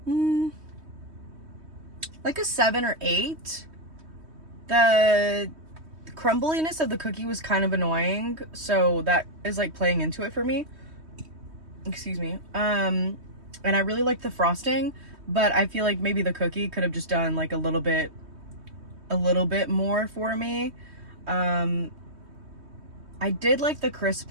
like a 7 or 8. The crumbliness of the cookie was kind of annoying, so that is like playing into it for me. Excuse me. And I really like the frosting, but I feel like maybe the cookie could have just done like a little bit more for me. I did like the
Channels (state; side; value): late; left; 3.2 ms